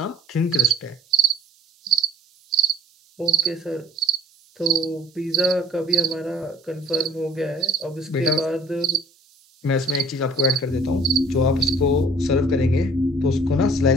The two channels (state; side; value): normal; both; correlation 0.55